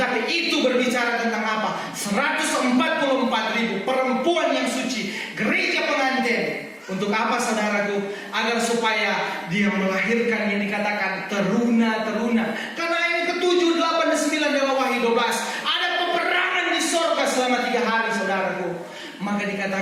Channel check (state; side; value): identical; both; correlation 1.00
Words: itu berbicara tentang apa? 144.000 perempuan yang suci, gereja pengantin. Untuk apa saudaraku? Agar supaya dia melahirkan yang dikatakan teruna-teruna. Karena yang ke-7, 8, dan 9 dalam Wahyu 12 ada peperangan di sorga selama 3 hari saudaraku. Maka